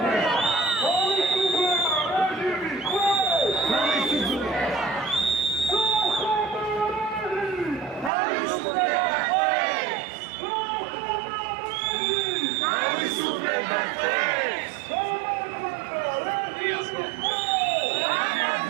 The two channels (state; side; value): drops out; left; at 8.1 s